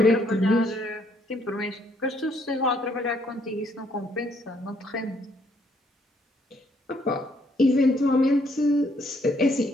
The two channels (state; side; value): normal; both; correlation 0.69